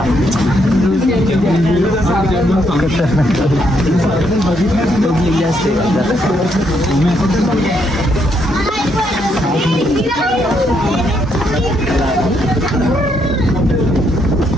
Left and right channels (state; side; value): normal; both; correlation 0.75